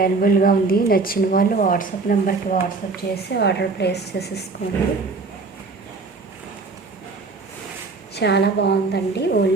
ఉంది. నచ్చిన వాళ్ళు వాట్సాప్ నెంబర్కి వాట్సాప్ చేసి ఆర్డర్ ప్లేస్ చేసేసుకోండి. చాలా బాగుందండి.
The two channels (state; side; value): quieter; left; 4.0 dB